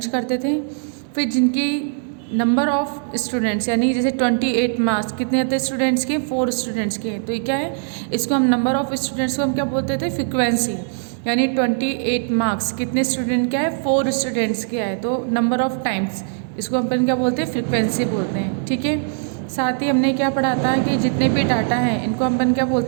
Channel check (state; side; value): silent; left; digital silence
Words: करते थे। फिर जिनकी नंबर ऑफ स्टूडेंट्स यानी जैसे 28 मार्क्स कितने आते हैं स्टूडेंट्स के, 4 स्टूडेंट्स के। तो ये क्या है, इसको हम नंबर ऑफ स्टूडेंट्स को हम क्या बोलते थे, फ्रिक्वेंसी। यानी 28 मार्क्स कितने स्टूडेंट क्या है, 4 स्टूडेंट्स के आए, तो नंबर ऑफ टाइम्स इसको अपन क्या बोलते हैं, फ्रिक्वेंसी बोलते हैं। ठीक है, साथ ही हमने क्या पढ़ा था कि जितने भी डाटा हैं इनको अपन क्या